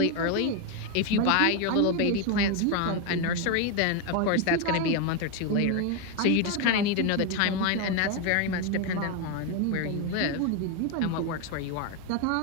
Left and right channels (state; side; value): different; both; correlation 0.02